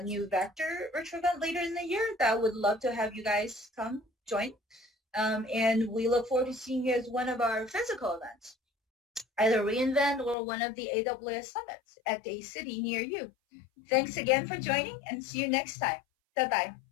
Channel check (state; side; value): drops out; right; at 10.4 s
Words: new Vector virtual event later in the year that I would love to have you guys come join. And we look forward to seeing you as one of our physical events, either reInvent or one of the AWS summits at a city near you. Thanks again for joining and see you next time.